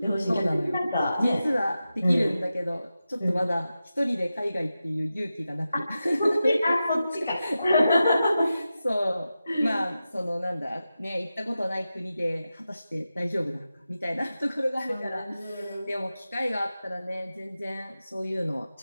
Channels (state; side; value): inverted; both; correlation -0.92